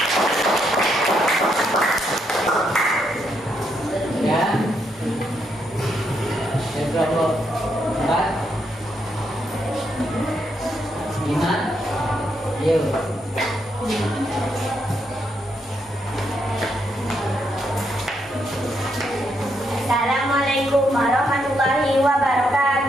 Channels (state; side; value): normal; both; correlation 0.78